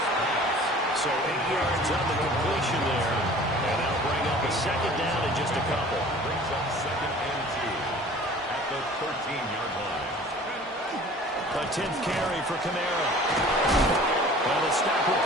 So 8 yards on the completion there. And that'll bring up a 2nd down in just a couple. Brings up 2nd and 2 at the 13-yard line. A 10th carry for Kamara. And the stop will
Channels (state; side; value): normal; both; correlation 0.46